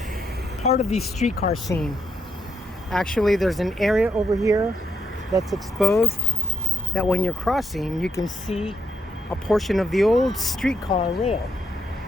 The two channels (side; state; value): both; normal; correlation 0.80